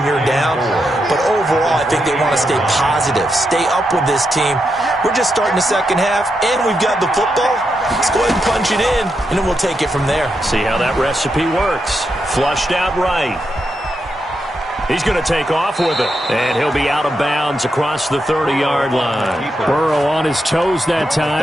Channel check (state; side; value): normal; both; correlation 0.84